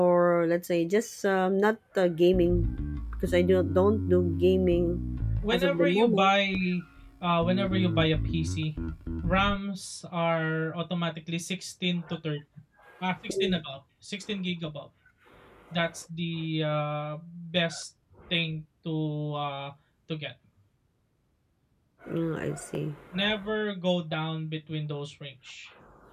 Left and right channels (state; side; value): identical; both; correlation 1.00